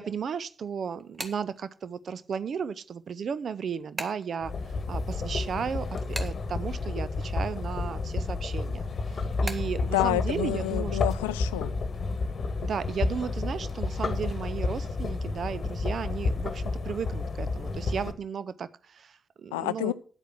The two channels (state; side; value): normal; both; correlation 0.69